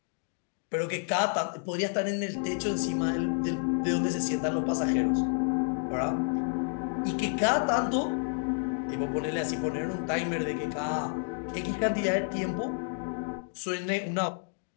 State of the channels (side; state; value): right; silent; 58 dB below the other